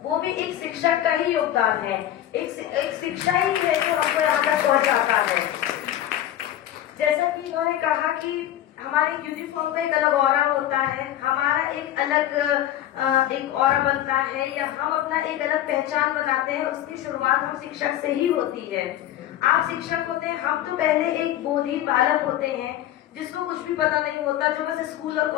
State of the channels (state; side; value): quieter; right; 12.6 dB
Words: वो भी एक शिक्षक का ही योगदान है, एक शिक्षा ही है जो हमको यहाँ तक पहुँचाता है। जैसा कि इन्होंने कहा कि हमारे यूनिफॉर्म का एक अलग ऑरा होता है, हमारा एक अलग एक ऑरा बनता है, या हम अपना एक अलग पहचान बनाते हैं, उसकी शुरुआत हम शिक्षक से ही होती है। आप शिक्षक होते हैं, हम तो पहले एक बोधी बालक होते हैं जिसको कुछ भी पता नहीं होता, जो बस स्कूल और